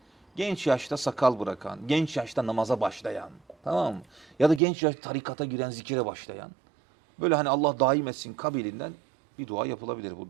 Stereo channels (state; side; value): drops out; left; at 4.6 s